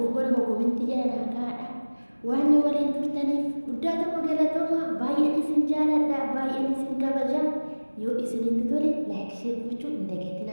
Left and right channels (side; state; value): both; inverted; correlation -1.00